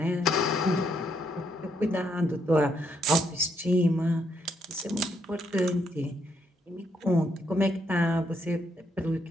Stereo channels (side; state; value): both; normal; correlation 0.75